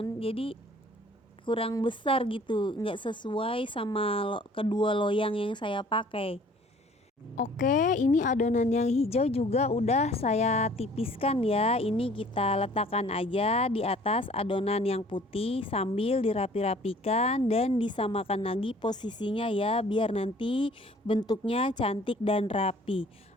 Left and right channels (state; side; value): normal; both; correlation 0.54